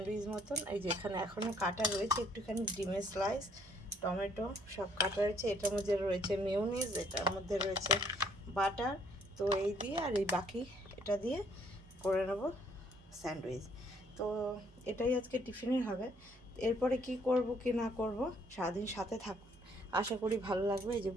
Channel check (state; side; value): normal; both; correlation 0.64